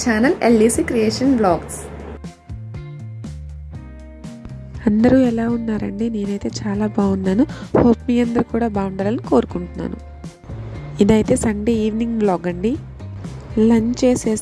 channel LDC creation blogs. అందరూ ఎలా ఉన్నారండి? నేనైతే చాలా బాగున్నాను. హోప్ మీ అందరూ కూడా బాగుండాలని కోరుకుంటున్నాను. ఇదైతే సండే ఈవినింగ్ బ్లాగ్ అండి. లంచ్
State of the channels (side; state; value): both; identical; correlation 1.00